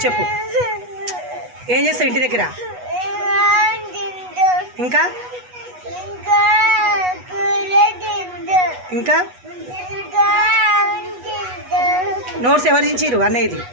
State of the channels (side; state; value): left; late; 8.2 ms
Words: చెప్పు. ఏం చేస్తావు ఇంటి దగ్గర? ఇంకా ఇంకా నోట్స్ ఎవరు ఇచ్చిర్రు అన్నయ్యది?